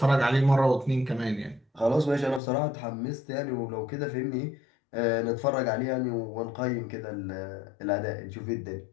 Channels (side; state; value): right; drops out; at 2.4 s